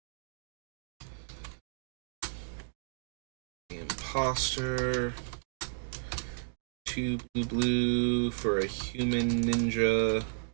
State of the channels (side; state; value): left; silent; digital silence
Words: The Imposter. 2 blue for a human ninja.